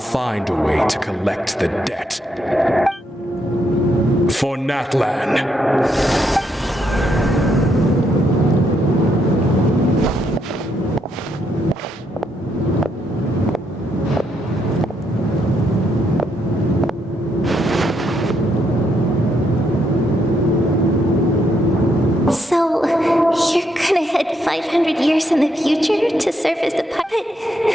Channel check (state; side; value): normal; both; correlation 0.76